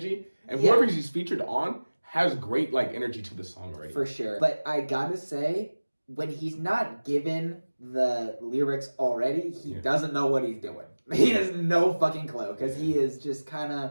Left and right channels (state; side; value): inverted; both; correlation -1.00